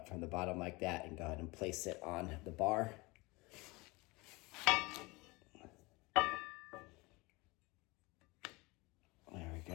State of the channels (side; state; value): right; quieter; 24.2 dB